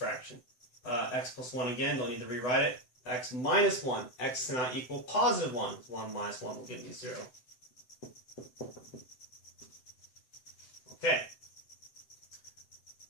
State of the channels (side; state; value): right; late; 7.9 ms